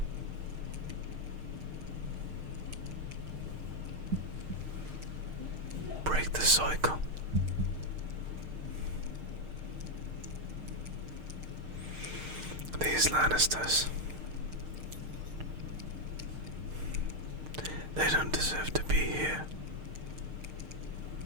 Break the cycle. These Lannisters, they don't deserve to be here.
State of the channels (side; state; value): left; late; 6.5 ms